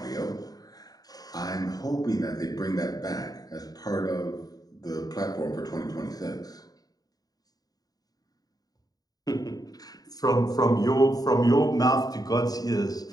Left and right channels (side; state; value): right; late; 0.18 ms